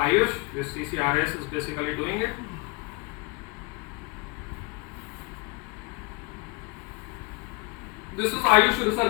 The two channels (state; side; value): quieter; right; 27.4 dB